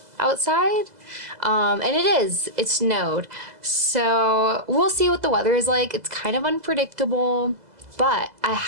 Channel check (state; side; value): late; left; 2.0 ms